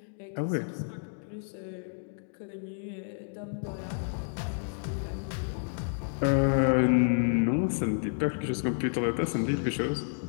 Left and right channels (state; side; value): silent; right; digital silence